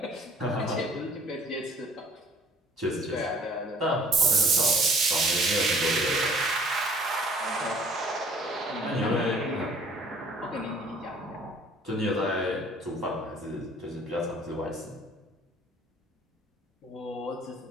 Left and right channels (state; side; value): normal; both; correlation 0.55